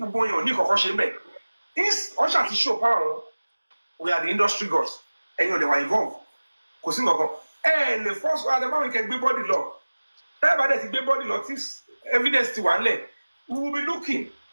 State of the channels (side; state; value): both; inverted; correlation -1.00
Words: going on Nico Hoshimbe. This Osha to show power. We are the industry gods, and you know they were involved. Kosingo, and the first one, the man we can be body law. Everybody is body law. This evidence to one leg. We will be looking